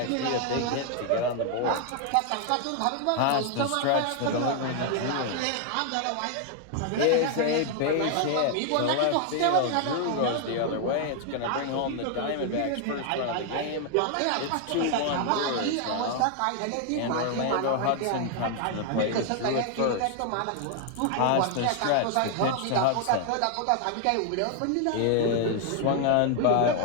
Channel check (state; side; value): different; both; correlation 0.00